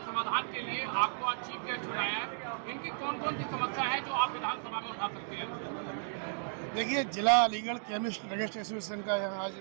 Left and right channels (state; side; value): silent; left; digital silence